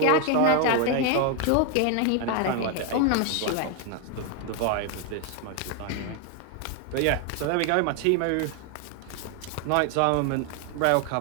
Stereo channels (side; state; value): both; different; correlation 0.01